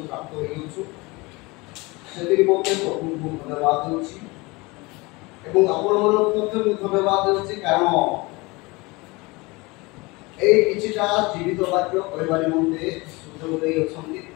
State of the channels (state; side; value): quieter; right; 24.5 dB